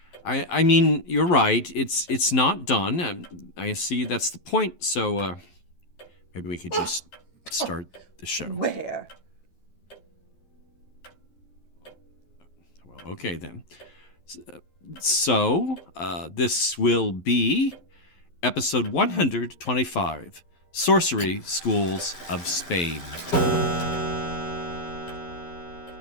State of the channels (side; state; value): right; late; 11 ms